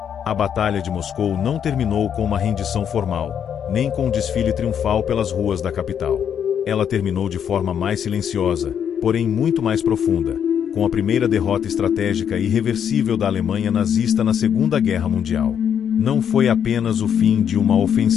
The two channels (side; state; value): right; quieter; 8.4 dB